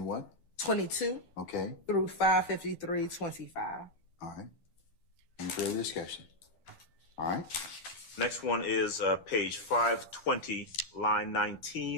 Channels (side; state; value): right; late; 12 ms